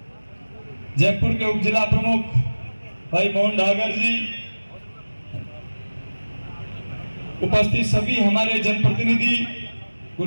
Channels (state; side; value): inverted; both; correlation -1.00